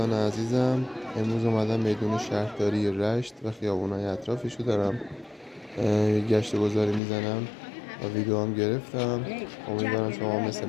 عزیزم، امروز اومدم میدان شهرداری رشت و خیابونای اطرافشو دارم گشت و گذاری میزنم و ویدیو هم گرفتم. امیدوارم شما مثل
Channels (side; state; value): right; drops out; at 7.0 s